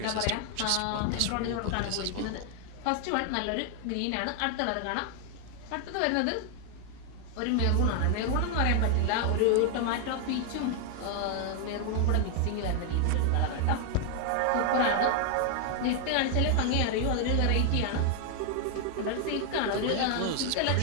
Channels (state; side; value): different; both; correlation 0.00